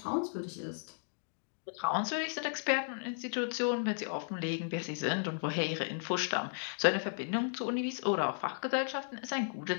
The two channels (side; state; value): right; silent; digital silence